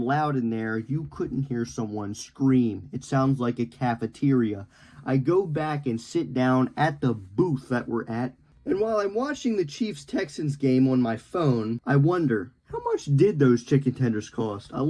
loud in there, you couldn't hear someone scream. It sounds like a cafeteria. I go back and sit down at the booth that we're at, and while I'm watching the Chiefs-Texans game on my phone, I wonder, how much did those chicken tenders cost? I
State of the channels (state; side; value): identical; both; correlation 1.00